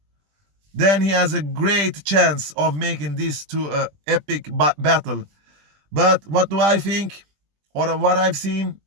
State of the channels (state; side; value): late; left; 20 ms